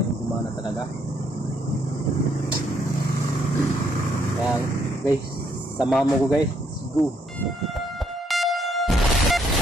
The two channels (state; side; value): normal; both; correlation 0.71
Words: gumana talaga. Kaya guys, samahan mo ko guys. Let's go.